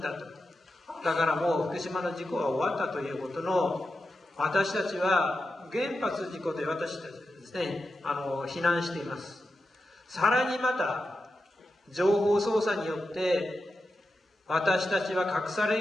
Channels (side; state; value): both; normal; correlation 0.90